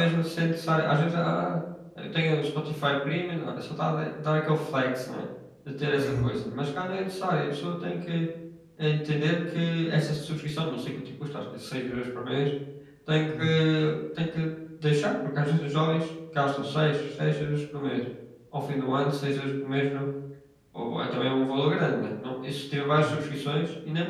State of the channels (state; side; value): identical; both; correlation 1.00